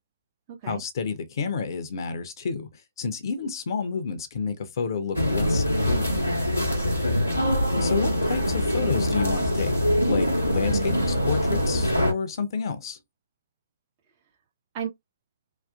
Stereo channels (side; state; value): both; inverted; correlation -0.81